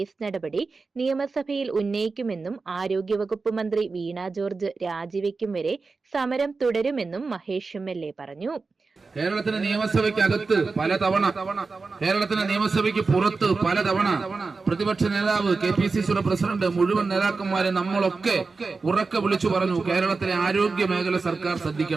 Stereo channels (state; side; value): quieter; left; 4.2 dB